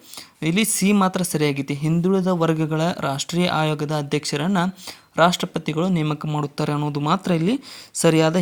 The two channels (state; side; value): identical; both; correlation 1.00